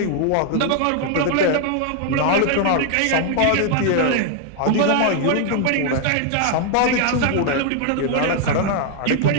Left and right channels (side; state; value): both; different; correlation 0.00